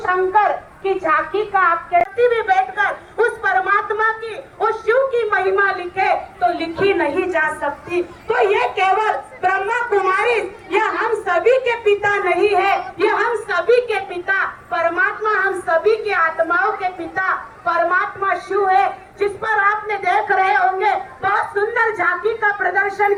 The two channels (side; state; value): both; identical; correlation 1.00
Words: की झांकी का आपके भी बैठकर उस परमात्मा की, उस शिव की महिमा लिखे तो लिखी नहीं जा सकती। तो ये केवल ब्रह्मा कुमारी यह हम सभी के पिता नहीं है, यह हम सभी के पिता परमात्मा, हम सभी के आत्माओं के पिता परमात्मा शिव है, जिस पर आपने देख रहे होंगे बहुत सुंदर झांकी का प्रदर्शन